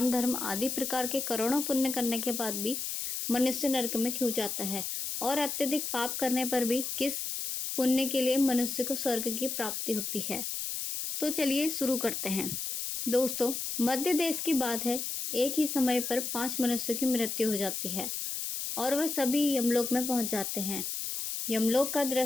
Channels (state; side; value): noise; left; hiss, 4 dB below the sound